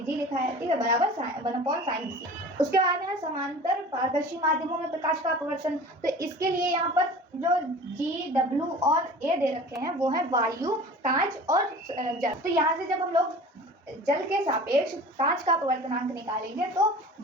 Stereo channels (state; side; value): normal; both; correlation 0.40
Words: g लिखा है। ठीक है, बराबर 1/sin c। उसके बाद में है समांतर पारदर्शी माध्यमों में प्रकाश का अपवर्तन। तो इसके लिए यहाँ पर जो g, w और a दे रखे हैं वो है वायु, कांच और जल। तो यहाँ से जब हम लोग जल के सापेक्ष कांच का अपवर्तनांक निकालेंगे तो